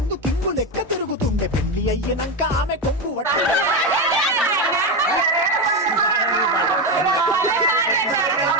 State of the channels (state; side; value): normal; both; correlation 0.13